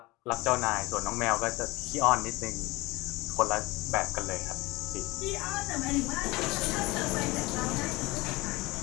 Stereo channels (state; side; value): quieter; right; 22.2 dB